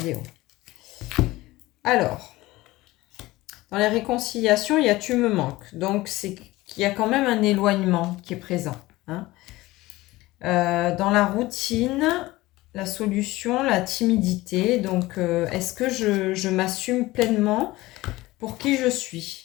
Alors, dans les réconciliations, il y a tu me manques. Donc, c'est qu'il y a quand même un éloignement qui est présent. Hein. Dans la routine, la solution, la timidité. Donc, est-ce que je m'assume pleinement pour qui je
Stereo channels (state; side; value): quieter; right; 18.9 dB